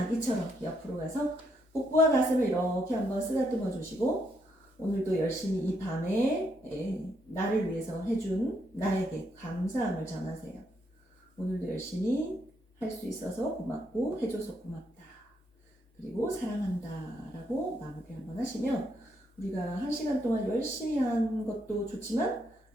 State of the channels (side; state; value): both; normal; correlation 0.76